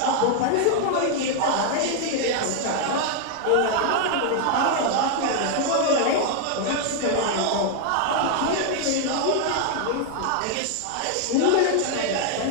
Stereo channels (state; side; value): different; both; correlation 0.00